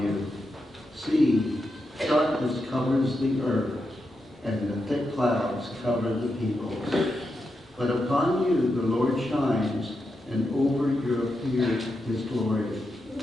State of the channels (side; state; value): both; normal; correlation 0.86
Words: you. See, darkness covers the earth, and the thick clouds cover the peoples. But upon you the Lord shines, and over you appears his glory.